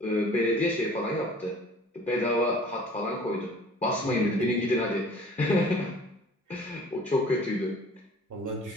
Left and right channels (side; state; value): both; normal; correlation 0.49